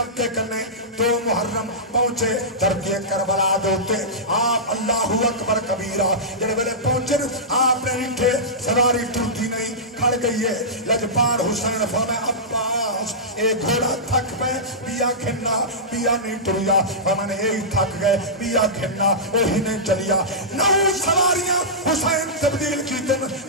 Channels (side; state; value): both; normal; correlation -0.15